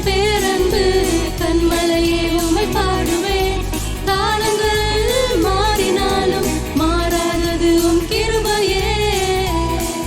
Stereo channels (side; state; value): both; identical; correlation 1.00